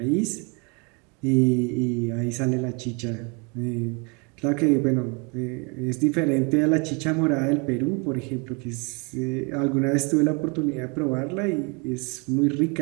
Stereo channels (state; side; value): quieter; left; 32.0 dB